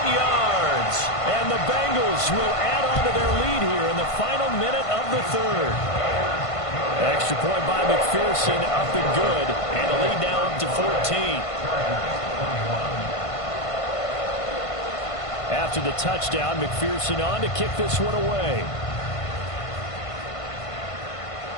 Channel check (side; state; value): right; late; 1.5 ms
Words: yards. And the Bengals will add on to their lead here in the final minute of the third. Extra point by McPherson, up and good. And the lead now up to 14. After the touchdown, McPherson on to kick this one away.